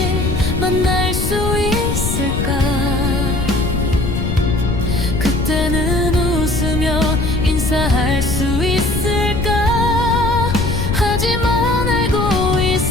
만날 수 있을까? 그때는 웃으며 인사할 수 있을까? 하지만 알고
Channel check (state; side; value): noise; left; rumble, 2 dB below the sound